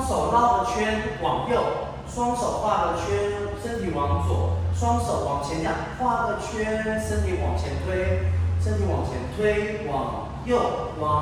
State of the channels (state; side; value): identical; both; correlation 1.00